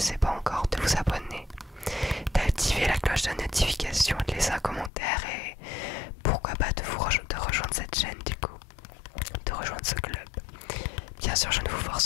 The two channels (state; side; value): drops out; right; at 4.9 s